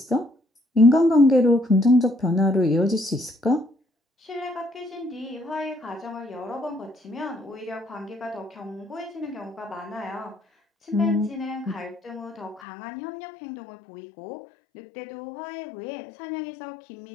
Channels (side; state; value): right; drops out; at 12.6 s